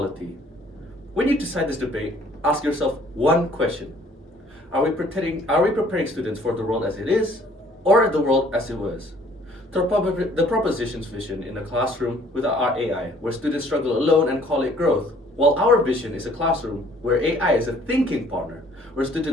When you decide this debate, ask yourself one question. Are we preparing students for the world as it is, or the world as it was? The proposition's vision in a classroom without our AI, where students struggle alone and call it growth, while our vision is a classroom where AI is a thinking partner, where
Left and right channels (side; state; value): both; normal; correlation 0.58